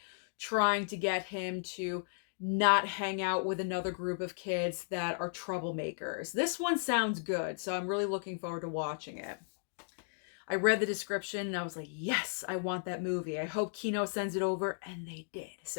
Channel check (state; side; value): silent; right; digital silence